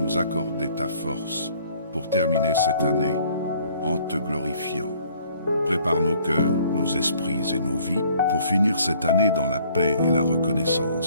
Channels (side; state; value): both; inverted; correlation -0.59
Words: accorder ta force pour terminer cette année en te glorifiant. Prépare nos cœurs, nos esprits et nos vies pour finir cette année dans la paix et la